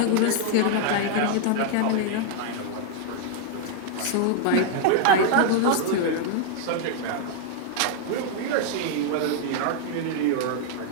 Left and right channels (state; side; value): different; both; correlation 0.00